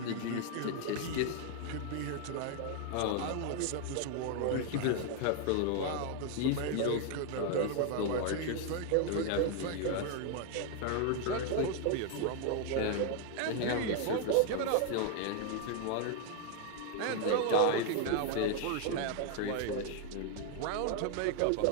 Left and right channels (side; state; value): both; different; correlation 0.00